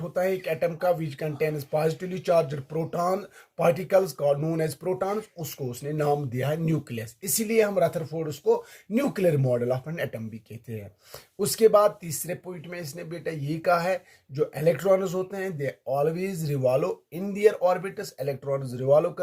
होता है एक एटम का, which contains positively charged proton particles called known as protons, उसको उसने नाम दिया है न्यूक्लियस। इसीलिए हम रदरफोर्ड उसको nuclear model of an atom भी कहते हैं। उसके बाद तीसरे पॉइंट में इसने बेटा ये कहा है, जो इलेक्ट्रॉन्स होते हैं they always revolve in their orbits. Electrons revolve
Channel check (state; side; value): identical; both; correlation 1.00